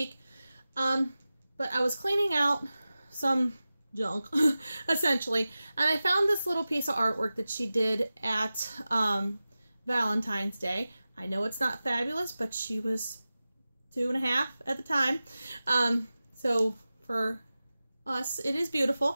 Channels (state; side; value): inverted; both; correlation -0.95